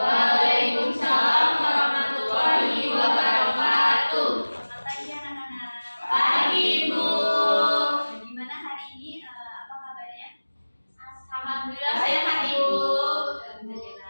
warahmatullahi wabarakatuh. Selamat pagi anak-anak. Pagi, Bu. Gimana hari ini? Apa kabarnya? Alhamdulillah sehat, Ibu.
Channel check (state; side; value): inverted; both; correlation -1.00